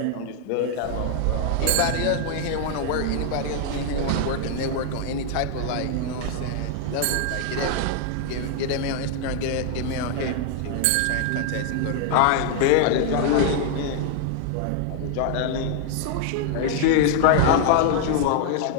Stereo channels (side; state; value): both; different; correlation -0.01